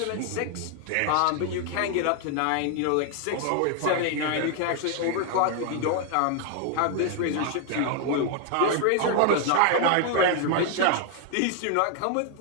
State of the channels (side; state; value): both; different; correlation 0.00